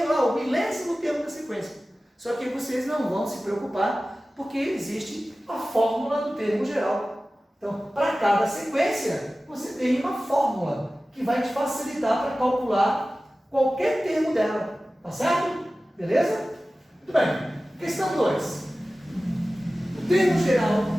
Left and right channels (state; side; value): normal; both; correlation 0.96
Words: lá, o 1000º termo da sequência. Só que vocês não vão se preocupar, porque existe a fórmula do termo geral. Então, para cada sequência, você tem uma fórmula que vai te facilitar para calcular qualquer termo dela. Tá certo? Beleza? Muito bem. Questão 2. O termo geral